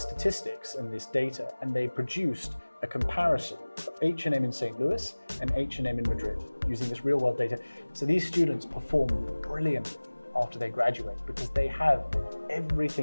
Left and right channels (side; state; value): both; inverted; correlation -1.00